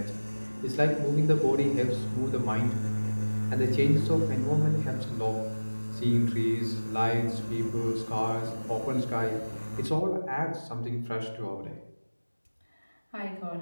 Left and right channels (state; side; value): inverted; both; correlation -1.00